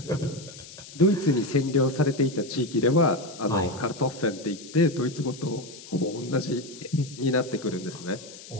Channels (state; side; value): noise; left; hiss, 16 dB below the sound